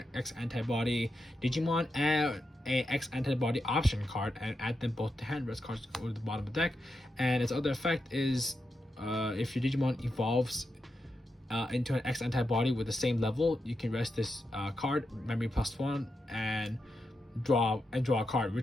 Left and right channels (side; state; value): both; normal; correlation 0.86